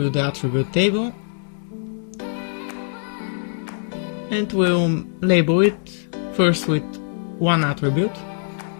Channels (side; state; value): right; silent; digital silence